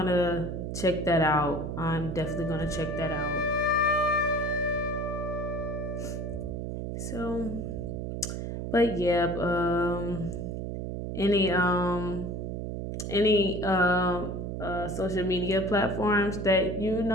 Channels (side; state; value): right; noise; hum, 4 dB below the sound